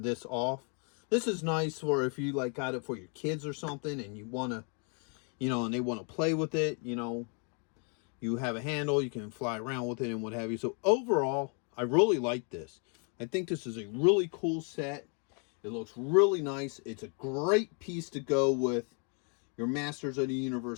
off. This is nice for if you got it for your kids or something and you want to, and they want to play with it, you have a handle, you can fly around with it and what have you. So overall, I really like this. I think this is a really cool set. It looks really nice. It's a great piece to go with your Masters of the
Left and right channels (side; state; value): right; quieter; 39.1 dB